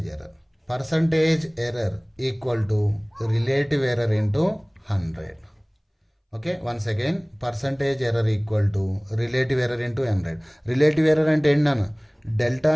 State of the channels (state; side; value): identical; both; correlation 1.00